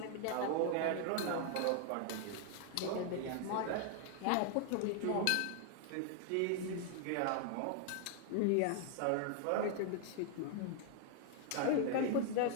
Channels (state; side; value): different; both; correlation 0.00